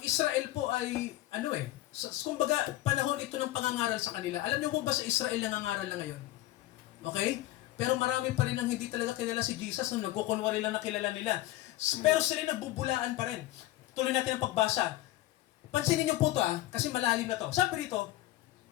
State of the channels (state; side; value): quieter; right; 15.9 dB